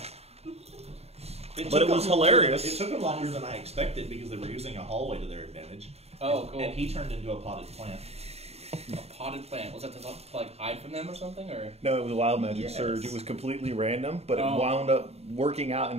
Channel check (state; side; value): late; left; 0.30 ms